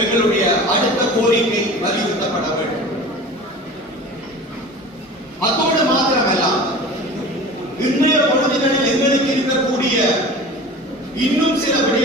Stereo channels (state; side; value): normal; both; correlation 0.37